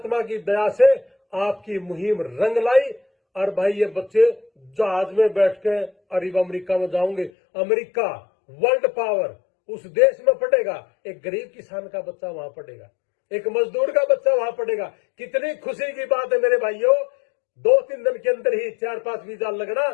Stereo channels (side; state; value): right; drops out; at 7.3 s